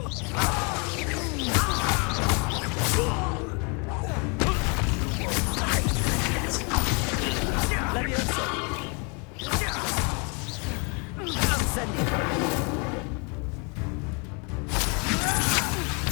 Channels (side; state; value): right; quieter; 33.8 dB